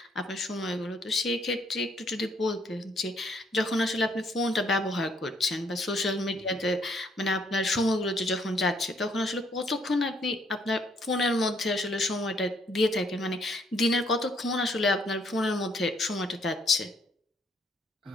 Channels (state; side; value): normal; both; correlation 0.68